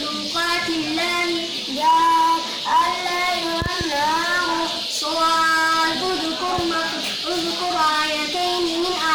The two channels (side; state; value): both; identical; correlation 1.00